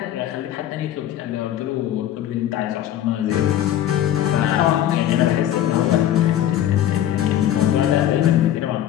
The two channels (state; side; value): quieter; right; 11.7 dB